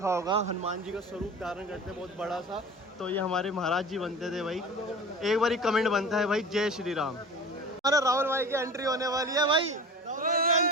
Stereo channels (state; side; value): normal; both; correlation 0.37